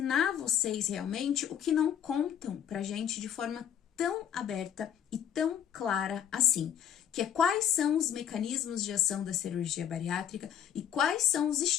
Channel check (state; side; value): quieter; right; 9.3 dB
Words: vocês realmente o que não contam pra gente de forma tão aberta e tão clara assim. Que é quais são os mecanismos de ação da cirurgia bariátrica e quais são os